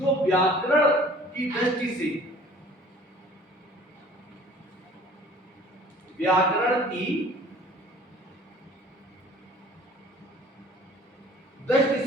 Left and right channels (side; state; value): both; normal; correlation 0.50